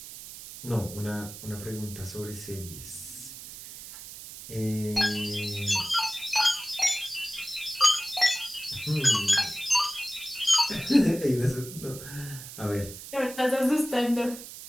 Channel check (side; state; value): right; noise; hiss, 13 dB below the sound